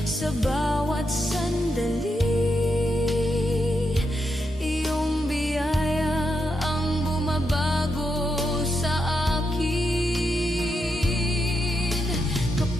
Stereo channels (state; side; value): normal; both; correlation 0.84